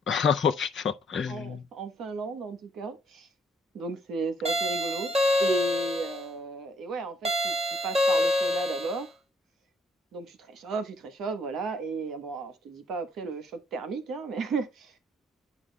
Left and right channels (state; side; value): normal; both; correlation 0.67